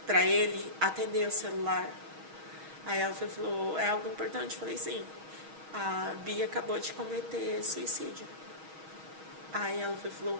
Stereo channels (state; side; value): late; left; 6.3 ms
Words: para ele atender o celular. Aí ela falou, é algo importante? Eu falei, sim. A Bia acabou de cometer suicídio. Aí ela falou,